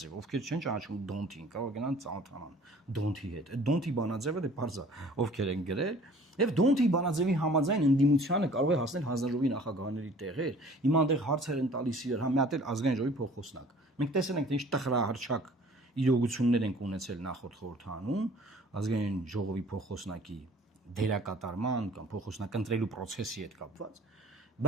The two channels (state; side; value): normal; both; correlation 0.50